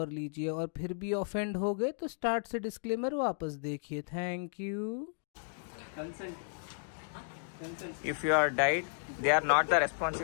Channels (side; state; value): right; silent; digital silence